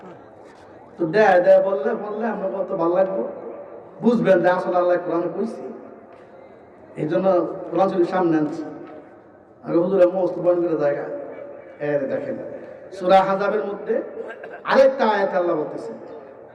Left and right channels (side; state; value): both; identical; correlation 1.00